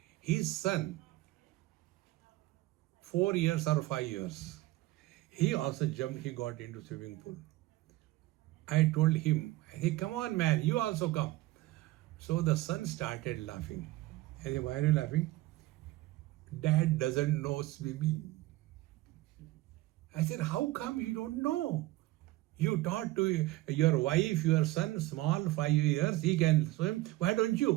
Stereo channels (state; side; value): quieter; left; 18.1 dB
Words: His son, 4 years or 5 years, he also jumped, he got into swimming pool. I told him, hey, come on, man, you also come. So the son started laughing. I said, why are you laughing? Dad doesn't know swimming. I said, how come you don't know? You taught to your wife, your son, small, 5 years, he can swim. Why don't